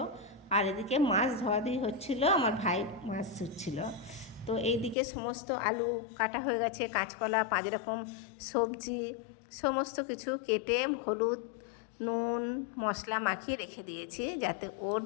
আর এদিকে মাছ ধোয়াধুয়ি হচ্ছিল, আমার ভাই মাছ ধুচ্ছিল। তো এইদিকে সমস্ত আলু কাটা হয়ে গেছে, কাঁচকলা, 5 রকম সবজি সমস্ত কিছু কেটে হলুদ নুন মশলা মাখিয়ে রেখে দিয়েছি যাতে ওর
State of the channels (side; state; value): right; drops out; at 5.0 s